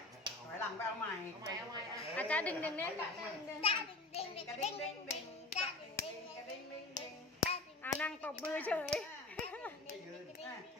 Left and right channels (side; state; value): right; quieter; 3.0 dB